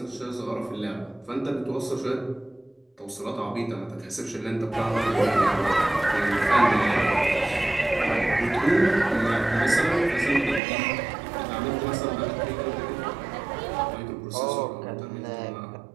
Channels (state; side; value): drops out; left; at 10.6 s